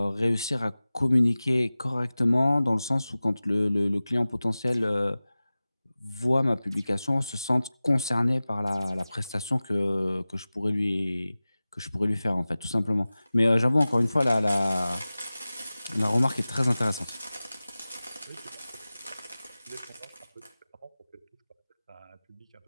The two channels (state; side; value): inverted; both; correlation -0.97